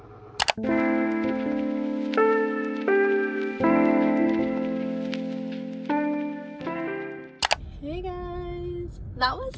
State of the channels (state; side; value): identical; both; correlation 1.00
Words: Hey guys, that was